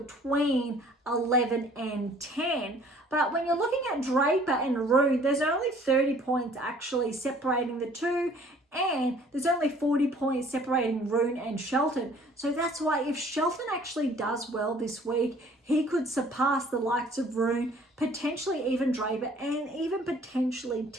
11 and 10. But when you're looking at Draper and Rune, there's only 30 points actually separating the two. And there's only 40 points separating Rune and Shelton. So that's why if Shelton actually does well this week, he could surpass the likes of Rune, potentially even Draper, and even potentially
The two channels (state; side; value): normal; both; correlation 0.55